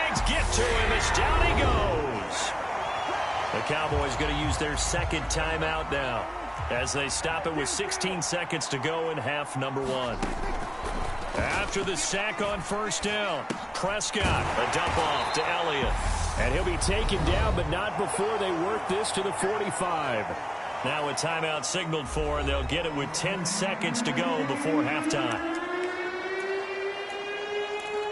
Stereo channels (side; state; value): both; identical; correlation 1.00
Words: get to him as down he goes. The Cowboys going to use their 2nd timeout now, as they stop it with 16 seconds to go in half number 1. After the sack on first down, Prescott, a dump off to Elliott. And he'll be taken down, but not before they work this to the 45. Now a timeout signaled for, and they'll get it with 10 seconds to go before halftime.